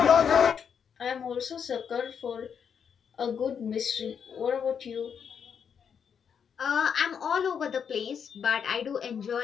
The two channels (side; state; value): right; quieter; 7.2 dB